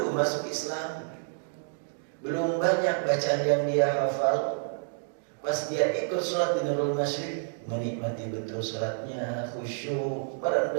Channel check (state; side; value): silent; left; digital silence